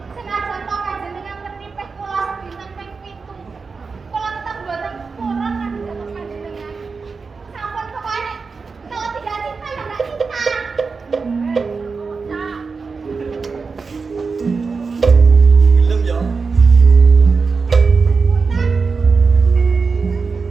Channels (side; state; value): left; quieter; 4.7 dB